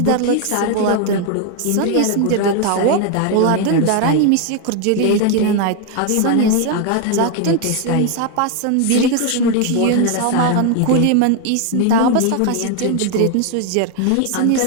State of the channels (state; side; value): different; both; correlation 0.01